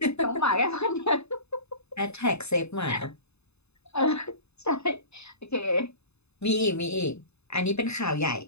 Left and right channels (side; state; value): right; late; 0.80 ms